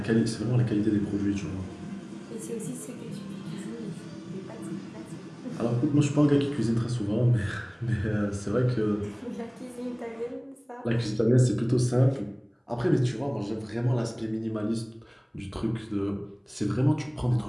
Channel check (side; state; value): both; identical; correlation 1.00